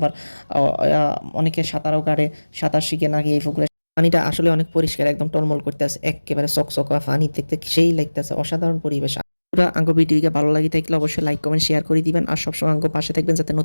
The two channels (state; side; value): inverted; both; correlation -1.00